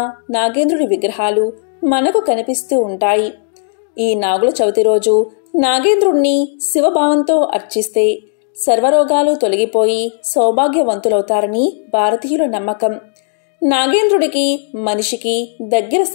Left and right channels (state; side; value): silent; right; digital silence